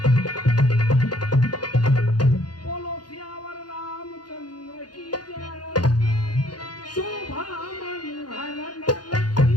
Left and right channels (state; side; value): late; right; 0.70 ms